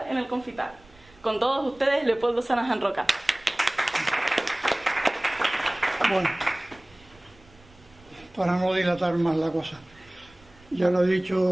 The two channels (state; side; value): noise; right; rumble, 27 dB below the sound